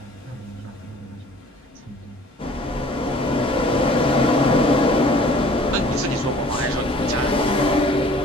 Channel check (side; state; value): both; normal; correlation 0.51